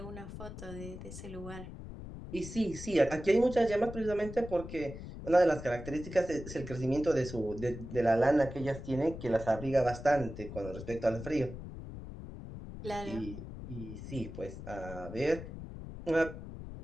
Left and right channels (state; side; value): noise; left; rumble, 11 dB below the sound